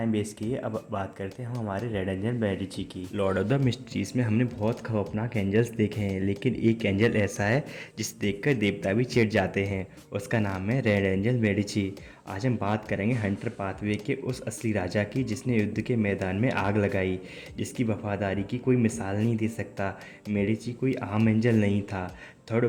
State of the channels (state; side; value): identical; both; correlation 1.00